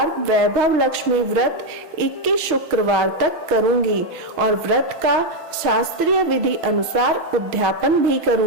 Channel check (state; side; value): late; left; 6.4 ms